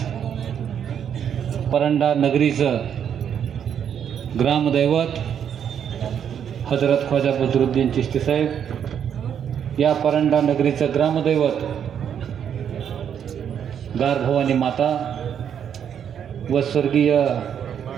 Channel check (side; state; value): left; quieter; 8.6 dB